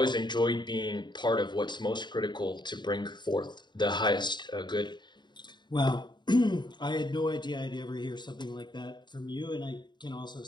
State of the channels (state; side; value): late; right; 0.22 ms